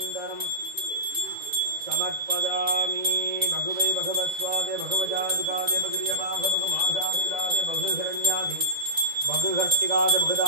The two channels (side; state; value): left; late; 2.0 ms